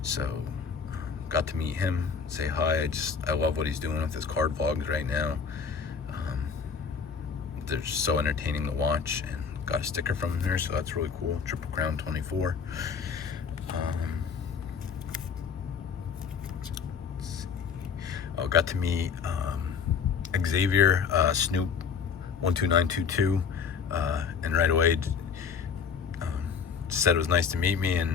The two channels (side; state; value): right; quieter; 6.2 dB